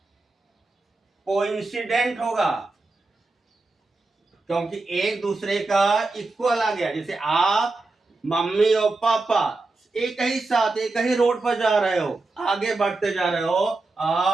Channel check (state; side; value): quieter; left; 3.4 dB